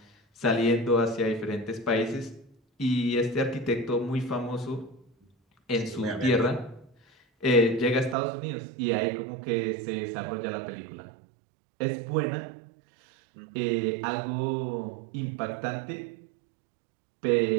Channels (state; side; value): drops out; left; at 8.2 s